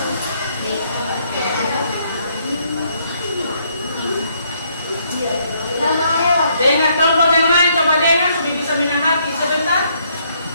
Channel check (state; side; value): inverted; both; correlation -0.70